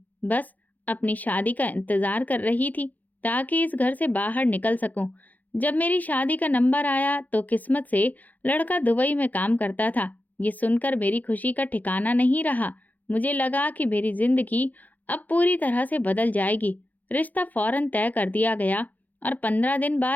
बस अपनी शादी का इंतजार कर रही थी ताकि इस घर से बाहर निकल सकूं। जब मेरी शादी का नंबर आया तो किस्मत से लड़का दुबई में काम करता था। ये सुनकर मेरी खुशी का ठिकाना नहीं रहा। मुझे लगा कि मेरी जिंदगी अब पूरी तरह से बदल जाएगी। रिश्ता फौरन तय कर दिया गया और 15 दिन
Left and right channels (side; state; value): right; late; 0.081 ms